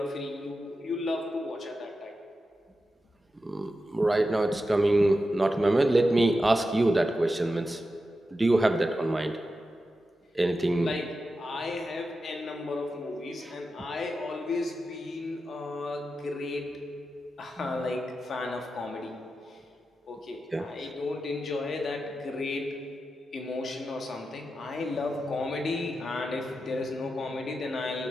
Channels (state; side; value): normal; both; correlation 0.90